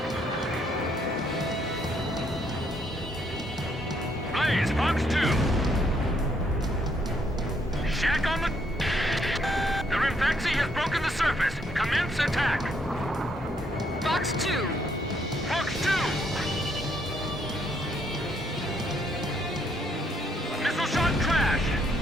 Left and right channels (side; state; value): both; normal; correlation 0.71